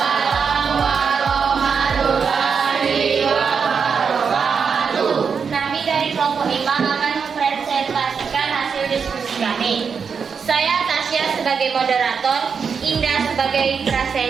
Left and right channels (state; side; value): quieter; left; 6.1 dB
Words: warahmatullahi wabarakatuh. Kami dari kelompok 5 akan mempresentasikan hasil diskusi kami. Saya Tasya sebagai moderator, Indah sebagai